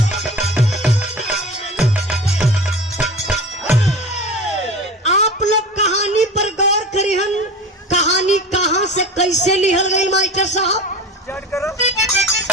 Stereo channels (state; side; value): normal; both; correlation 0.33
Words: कैसे लिहल गई मास्टर साहब?